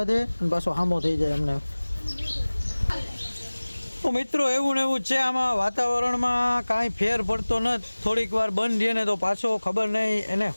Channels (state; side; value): inverted; both; correlation -1.00